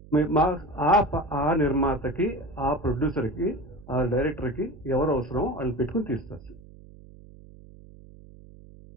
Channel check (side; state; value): right; noise; hum, 20 dB below the sound